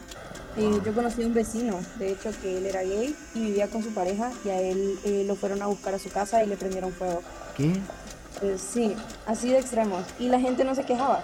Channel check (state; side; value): identical; both; correlation 1.00